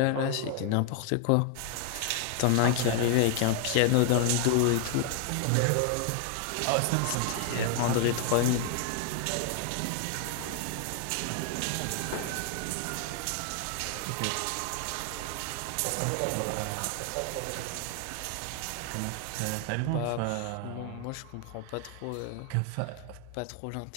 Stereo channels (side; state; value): both; different; correlation 0.00